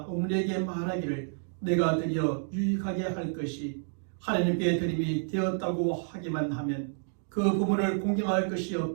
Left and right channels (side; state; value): left; silent; digital silence